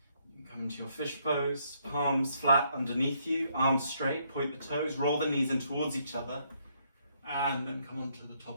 You can come into your fish pose, palms flat underneath you, arms straight, point the toes, roll the knees in towards each other, and then come onto the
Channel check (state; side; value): inverted; both; correlation -0.72